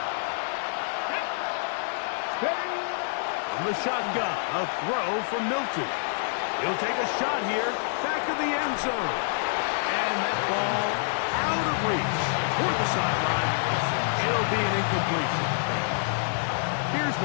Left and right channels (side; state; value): right; silent; digital silence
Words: From the shotgun, a throw from Milton. He'll take a shot here, back of the end zone. And that ball out of reach toward the sideline. It'll be an incompletion. Here's